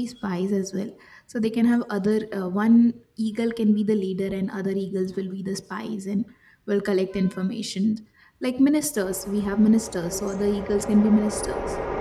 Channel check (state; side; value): identical; both; correlation 1.00